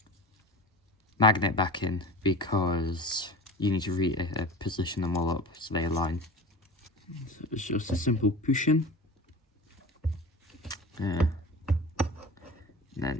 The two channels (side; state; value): both; normal; correlation 0.34